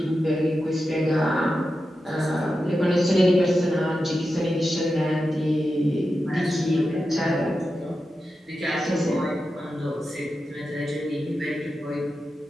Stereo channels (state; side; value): normal; both; correlation 0.90